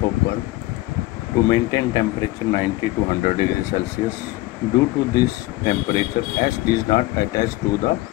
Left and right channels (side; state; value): right; quieter; 18.7 dB